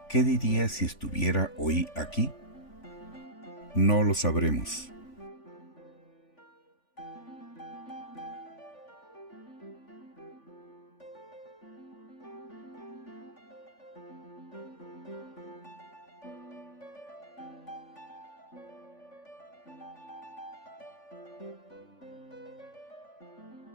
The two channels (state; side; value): late; right; 3.5 ms